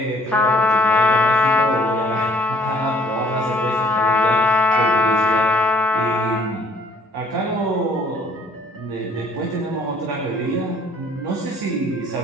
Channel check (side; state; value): both; normal; correlation 0.59